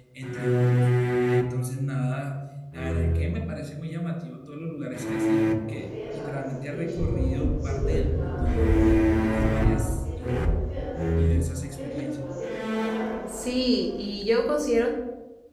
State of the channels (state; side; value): identical; both; correlation 1.00